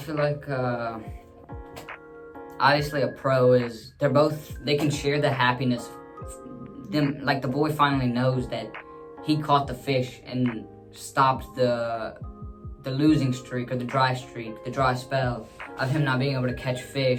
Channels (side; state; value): both; identical; correlation 1.00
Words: like obviously a pro is they can share the happiness. Them like the boy finally knows that he caught the fish and stopped the losing streak or the dry spell of him not being able to catch